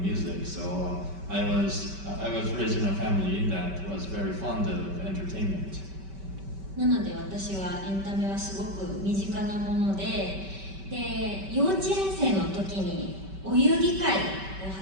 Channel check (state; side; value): late; left; 5.2 ms